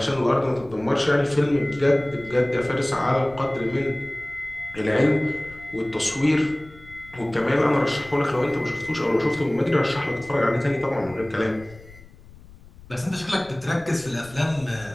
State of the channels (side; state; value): left; noise; rumble, 21 dB below the sound